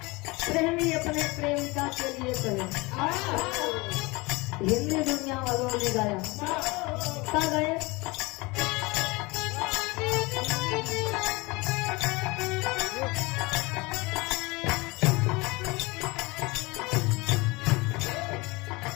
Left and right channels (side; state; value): right; quieter; 24.5 dB